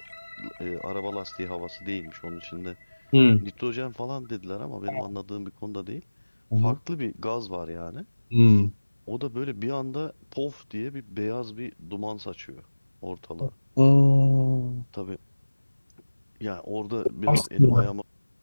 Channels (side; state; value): both; inverted; correlation -1.00